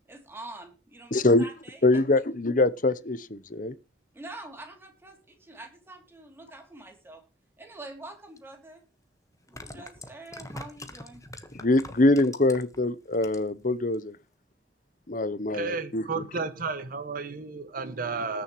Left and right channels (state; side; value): normal; both; correlation 0.37